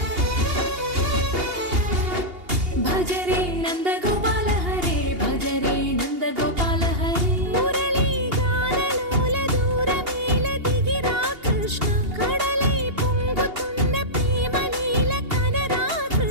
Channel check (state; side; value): late; left; 2.8 ms